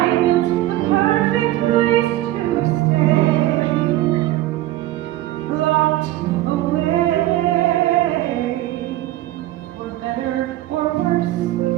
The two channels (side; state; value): left; quieter; 15.5 dB